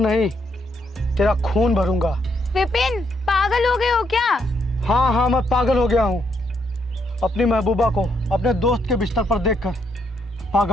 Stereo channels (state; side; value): normal; both; correlation 0.75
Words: तेरा खून भरूंगा। विपिन, पागल हो गए हो क्या? हाँ, मैं पागल हो गया हूँ। अपनी महबूबा को अपने दोस्त के बिस्तर पर देखकर